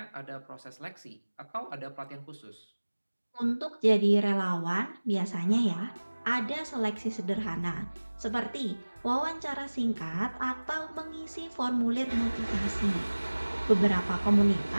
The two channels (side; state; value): both; inverted; correlation -1.00